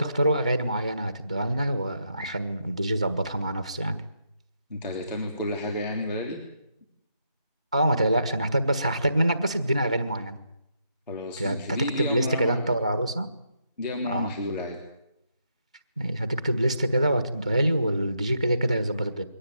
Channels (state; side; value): inverted; both; correlation -0.78